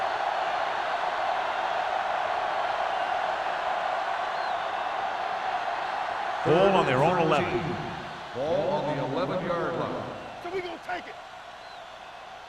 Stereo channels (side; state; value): both; identical; correlation 1.00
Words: Ball on their own 11. Ball on the 11-yard line. So we gonna take it.